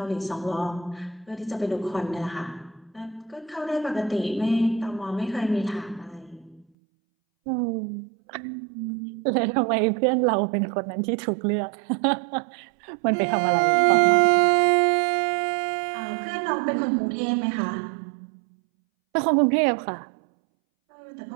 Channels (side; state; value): left; drops out; at 6.7 s